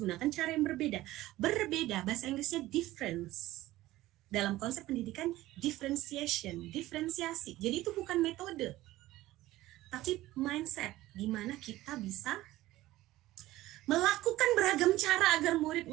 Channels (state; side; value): quieter; left; 16.6 dB